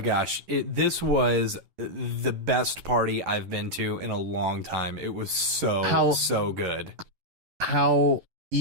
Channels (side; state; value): left; late; 11 ms